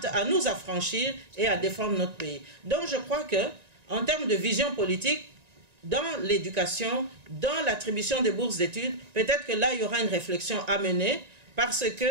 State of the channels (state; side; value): late; left; 1.9 ms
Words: à nous affranchir et à défendre notre pays. Donc je crois que, en termes de vision politique, dans l'éducation, dans l'attribution des bourses d'études, peut-être que là, il y aura une réflexion à mener, parce